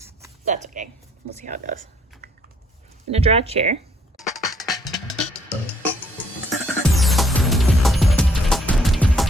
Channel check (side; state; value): both; normal; correlation 0.65